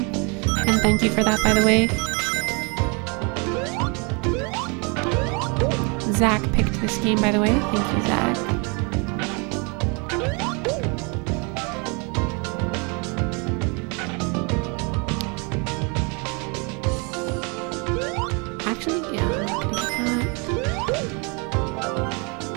And thank you for that, by the way. Zach picked this game, by the way. Thank you, Zach. Actually, yeah, I'm not gonna get that.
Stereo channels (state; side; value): quieter; left; 32.6 dB